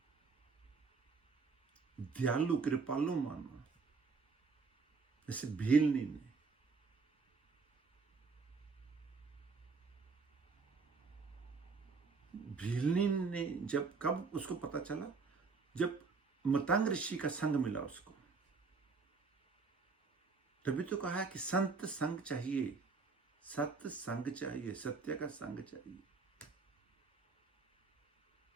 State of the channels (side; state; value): left; quieter; 4.6 dB